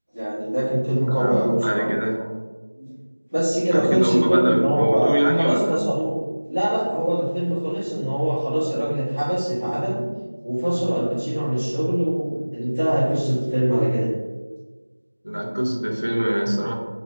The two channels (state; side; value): inverted; both; correlation -1.00